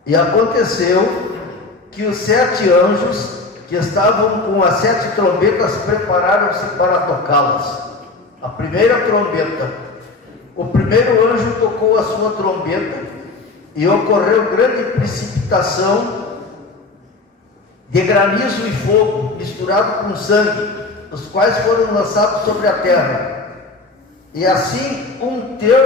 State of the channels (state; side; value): quieter; right; 3.6 dB